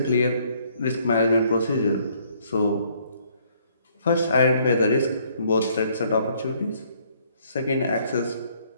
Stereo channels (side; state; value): both; inverted; correlation -0.65